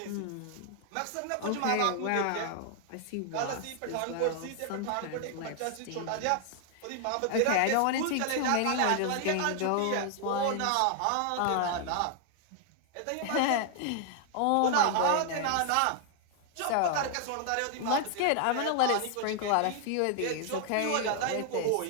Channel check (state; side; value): different; both; correlation 0.00